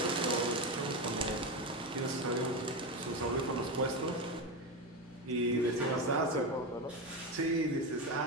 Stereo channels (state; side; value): normal; both; correlation 0.16